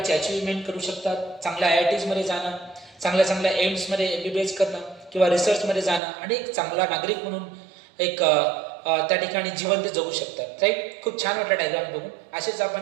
अचिव्हमेंट करू शकतात. चांगल्या IITsमध्ये जाणं, चांगल्या एम्समध्ये MBBS करणं किंवा रिसर्चमध्ये जाणं आणि एक चांगला नागरिक म्हणून एक त्या ठिकाणी जिवंत जगू शकतात. राईट. खूप छान वाटलं डायग्राम बघून. असेच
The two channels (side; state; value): left; drops out; at 6.0 s